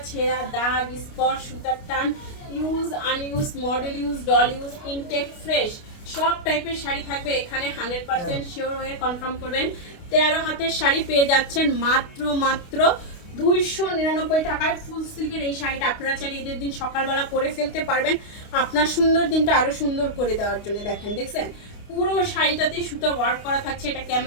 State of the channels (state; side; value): late; right; 29 ms